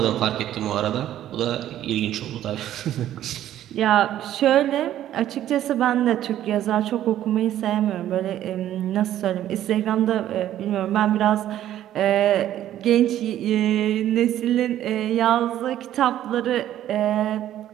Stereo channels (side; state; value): left; quieter; 12.2 dB